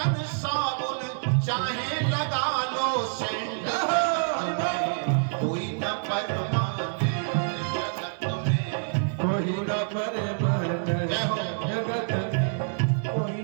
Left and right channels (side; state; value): left; silent; digital silence